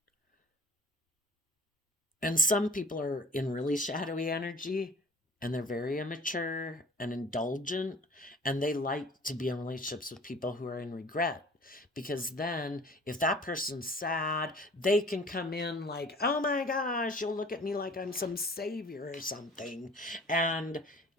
And some people are in really shadowy energy and they're very immature and indulgent, and they like to be in relationships with people who are in regret. Because then, if that person's sad, they can come in like, oh my gosh, you'll look at me like I'm some savior or something. And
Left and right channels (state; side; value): normal; both; correlation 0.47